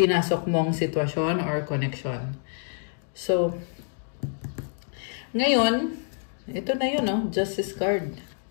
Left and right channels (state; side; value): silent; right; 60 dB below the other